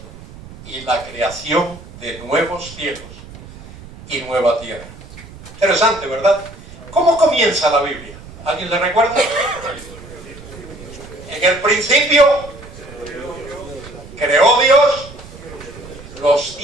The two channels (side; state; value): right; noise; rumble, 17 dB below the sound